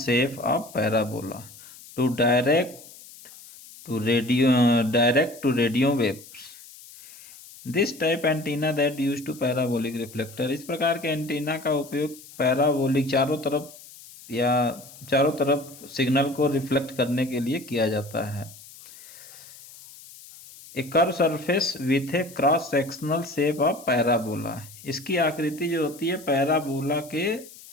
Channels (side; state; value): left; noise; hiss, 19 dB below the sound